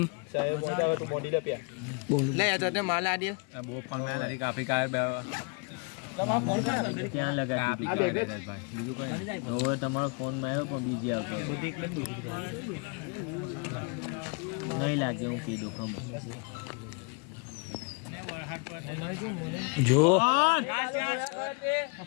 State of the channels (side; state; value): right; quieter; 34.9 dB